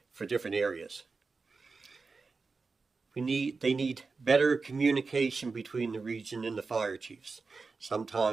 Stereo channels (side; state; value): left; quieter; 4.3 dB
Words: for different areas. They need better communication between the region and the fire chiefs.